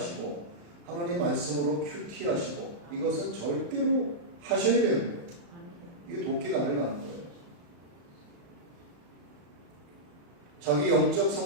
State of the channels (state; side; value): late; left; 35 ms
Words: 하나님 말씀으로 큐티하시고 이것은 절대로 하셔야 되는 거예요. 이게 도끼 나를 가는 거예요. 자기 영적